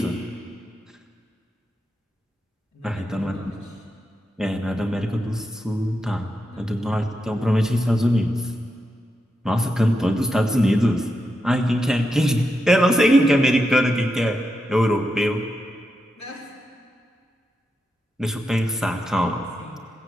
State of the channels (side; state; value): both; normal; correlation 0.87